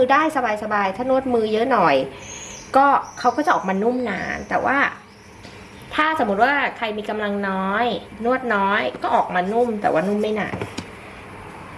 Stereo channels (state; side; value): identical; both; correlation 1.00